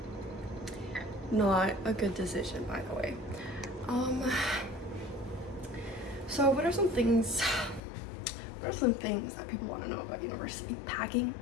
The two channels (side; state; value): right; drops out; at 7.8 s